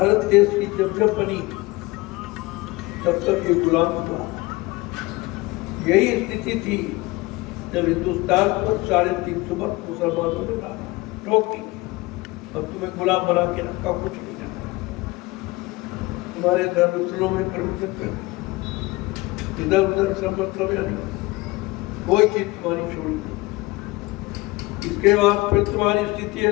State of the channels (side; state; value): right; quieter; 22.0 dB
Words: देश की जब जब बनी तब तक ये गुलाम हुआ। यही स्थिति थी जब हिंदुस्तान पर 350 वर्ष मुसलमानों ने टोक दी, अब तुम्हें गुलाम बना के रखा, कुछ नहीं करना, तुम्हारे धर्मस्थलों में प्रवचन कर, इधर उधर सब मतलब यानी कोई चीज तुम्हारी छोड़ी नहीं। इसके बाद फिर तुम्हारी स्थिति